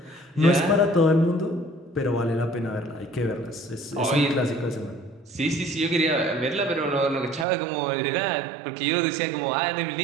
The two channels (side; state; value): left; drops out; at 7.5 s